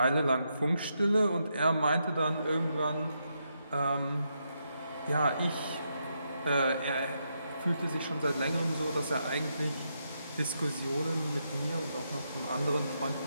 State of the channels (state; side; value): inverted; both; correlation -0.81